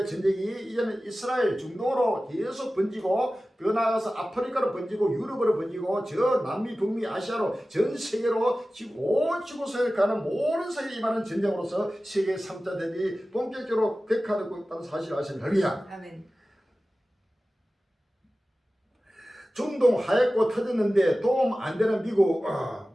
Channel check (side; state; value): both; normal; correlation 0.96